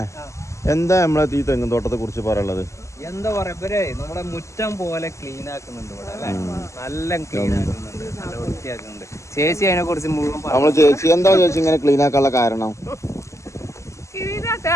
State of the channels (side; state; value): right; late; 0.14 ms